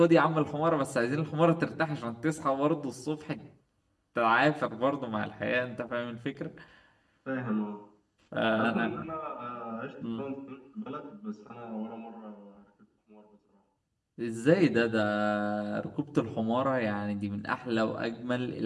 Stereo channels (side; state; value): both; identical; correlation 1.00